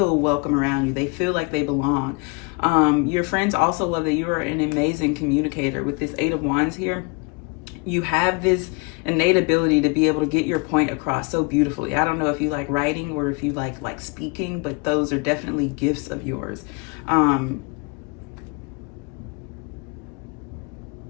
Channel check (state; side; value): quieter; right; 31.8 dB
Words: welcome around you. They feel like they belong. Your friends also love that you are an amazing communicator. With this Eight of Wands here, you have this innate ability to be able to get your point across so beautifully. I don't know if you like writing or if you like speaking, but those are definitely gifts of yours.